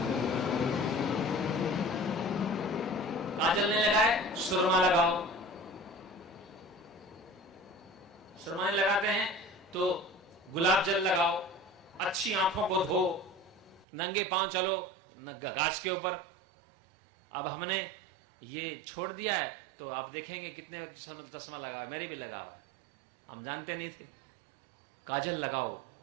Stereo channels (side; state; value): left; drops out; at 13.9 s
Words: काजल नहीं लगाए, सुरमा लगाओ। सुरमा लगाते हैं तो गुलाब जल लगाओ, अच्छी आंखों को धो, नंगे पांव चलो घास के ऊपर। अब हमने ये छोड़ दिया है तो आप देखेंगे कितने चश्मा लगा, मैंने भी लगा हुआ, हम जानते नहीं थे। काजल लगाओ,